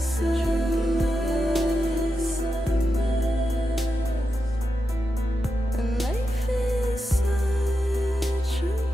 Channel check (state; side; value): normal; both; correlation 0.88